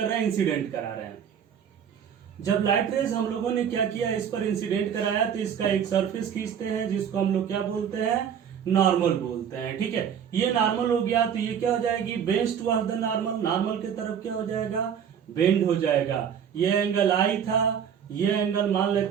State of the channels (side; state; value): left; quieter; 8.2 dB